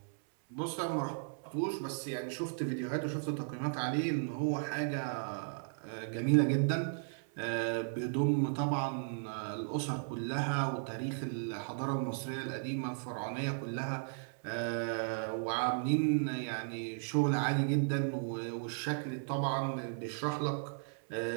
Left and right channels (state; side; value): silent; left; 54 dB below the other